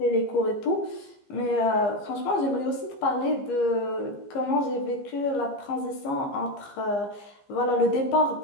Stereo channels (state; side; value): late; right; 15 ms